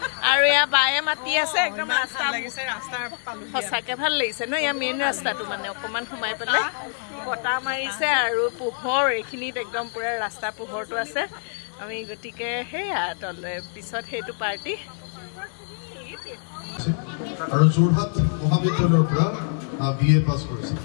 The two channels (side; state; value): right; silent; 62 dB below the other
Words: আৰু এয়া বায়ে মাতি আছে একদম ৰাস্তা সঁচাকে ভাল লাগিছে ন এয়া মেইন ৰাস্তাটো মানে অকমান সোমাই পেলাই বতাহ মাৰিছে আৰু পোহৰ এইখিনিত একদম পুৰা ৰাস্তা পোহৰটো আছে আমি গতিকে সেয়া তলে পিছত সেইটো পাৰ্টি আৰু যোৰহাট মহাবিদ্যালয়ৰ পৰা BA পাছ কৰিছে